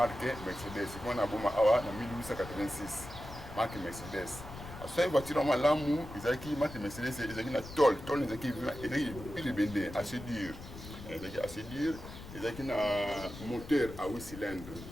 Mercedes. C'est qu'on a en 1886. Marqué Mercedes. Alors, cette voiture, on a l'amour, il y a qui marqué Mercedes, il y a qui la tolle. Tolle, il y a qui est assez dur. Il y a qui un moteur à 8 cylindres.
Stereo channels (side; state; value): left; noise; rumble, 13 dB below the sound